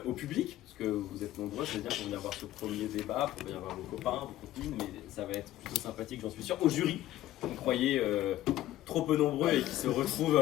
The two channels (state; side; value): quieter; right; 14.2 dB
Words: Au public, parce que vous êtes nombreux, c'est-à-dire pour venir voir ce premier débat, pour venir voir vos copains, vos copines, mais ça va être plutôt sympathique, j'en suis sûr. Au jury, vous croyez trop peu nombreux et qui se retrouvent